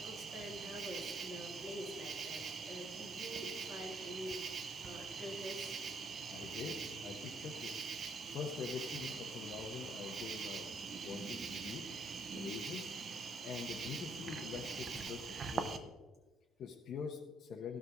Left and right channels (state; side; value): normal; both; correlation 0.70